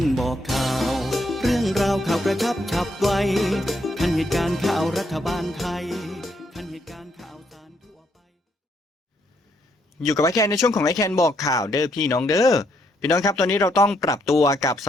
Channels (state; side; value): normal; both; correlation 0.74